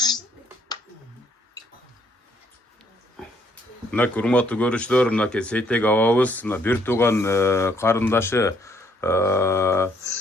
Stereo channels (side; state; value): both; normal; correlation 0.68